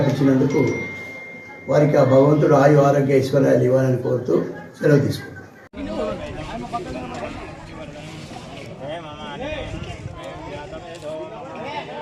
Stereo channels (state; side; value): identical; both; correlation 1.00